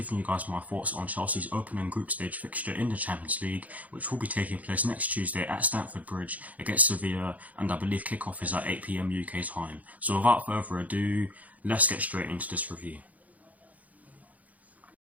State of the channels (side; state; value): left; late; 0.074 ms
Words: you guys my thoughts on Chelsea's opening group stage fixture in the Champions League, which will be taking place next Tuesday at Stamford Bridge against Sevilla, and I believe kickoff is at 8 PM UK time. So without further ado, let's get straight into this review.